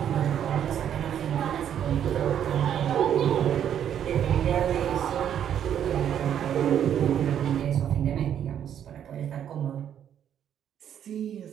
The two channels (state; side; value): quieter; left; 9.5 dB